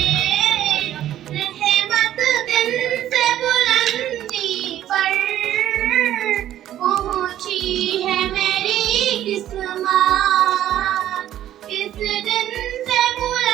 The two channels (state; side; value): quieter; left; 12.2 dB